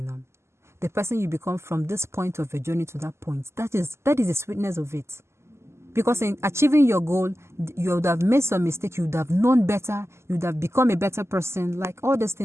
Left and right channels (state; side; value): late; left; 0.13 ms